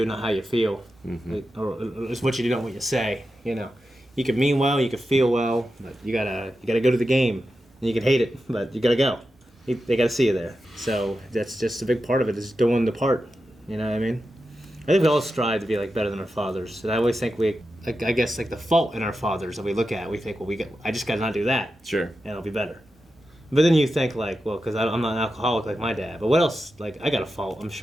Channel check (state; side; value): normal; both; correlation 0.90